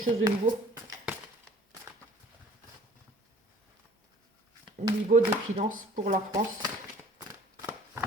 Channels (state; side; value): normal; both; correlation 0.52